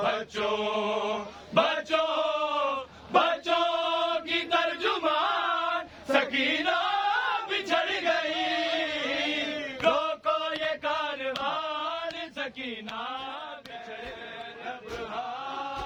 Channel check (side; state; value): both; identical; correlation 1.00